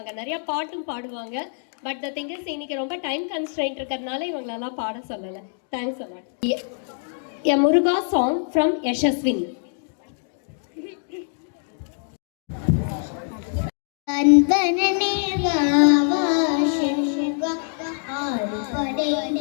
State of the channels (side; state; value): right; silent; digital silence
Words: நிறைய பாட்டும் பாடுவாங்க. பட் த திங் இஸ் இன்னைக்கு ரொம்ப டைம் கன்ஸ்ட்ரெயின்ட் இருக்கிறதுனால இவங்களெல்லாம் பாட சொல்லல. Thanks a lot. A Muruga song from Yashaswini. அன்பனே வாவா சசிவா ஆறுபடை